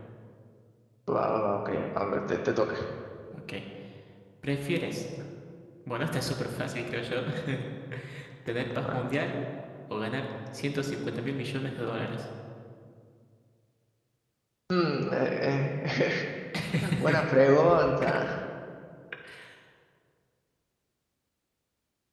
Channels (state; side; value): identical; both; correlation 1.00